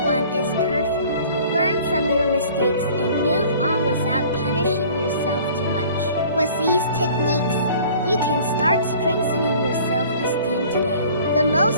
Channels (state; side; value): inverted; both; correlation -0.49